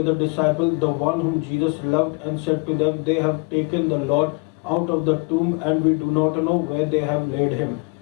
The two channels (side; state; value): right; quieter; 32.7 dB